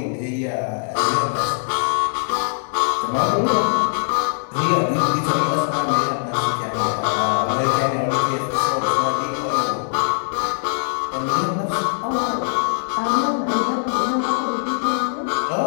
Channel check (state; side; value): silent; right; digital silence